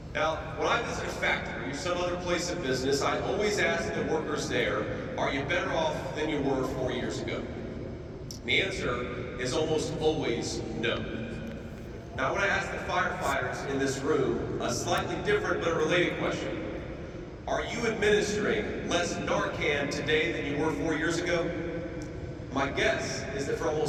Now, when I visit a factory or some other place of business, I always ask the workers there, are you better off than you were 4 years ago? The answer is almost always no. Now, I want to ask the firefighters in this room a slightly different but a related question. Are you administering less Narcan today than you were 4 years ago? My guess is that for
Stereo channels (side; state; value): both; identical; correlation 1.00